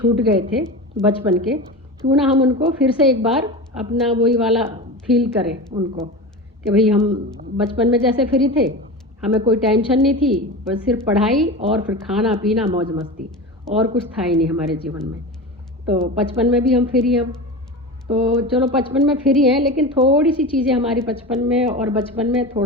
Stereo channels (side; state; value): both; normal; correlation 0.27